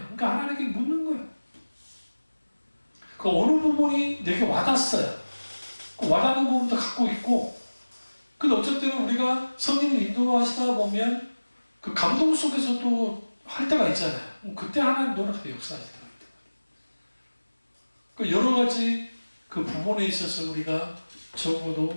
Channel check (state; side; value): inverted; both; correlation -1.00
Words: 그러니까 하나님께 묻는 거예요. 그 어느 부분이 내게 와닿았어요. 그 와닿는 부분도 갖고 있고, 근데 어쨌든 우리가 성령을 인도하시다 보면 그 감동 속에서도 할 때가 있잖아요. 그때 하나님 노력하게 역사하시더라고요. 그 여러 가지 그 부분에 있어서 우리가